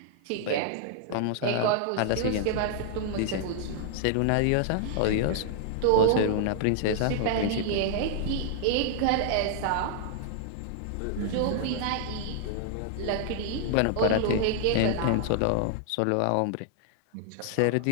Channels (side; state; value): both; different; correlation -0.01